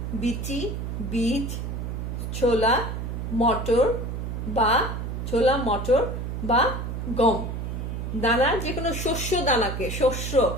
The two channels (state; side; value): noise; right; hum, 4 dB below the sound